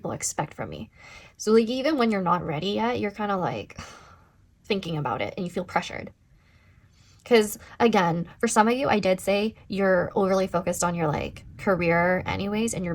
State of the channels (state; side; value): identical; both; correlation 1.00